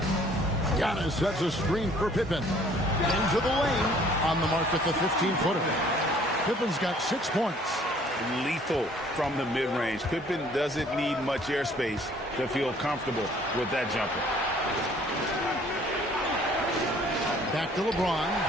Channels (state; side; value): normal; both; correlation 0.57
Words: Giannis sets a screen for Pippen. Into the lane. On the mark with the 15-footer. Pippen's got 6 points. Lethal from the mid-range. Pippen doesn't need much airspace to feel comfortable with that jumper. Back to LeBron.